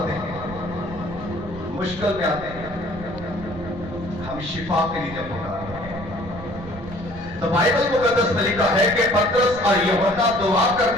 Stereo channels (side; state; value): right; noise; rumble, 13 dB below the sound